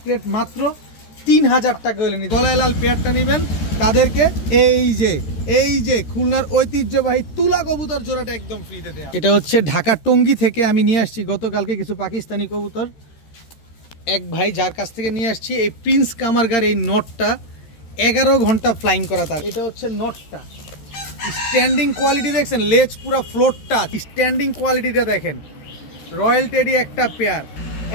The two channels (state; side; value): late; right; 14 ms